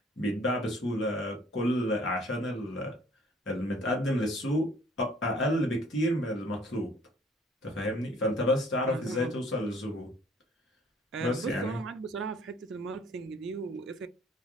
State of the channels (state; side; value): normal; both; correlation 0.57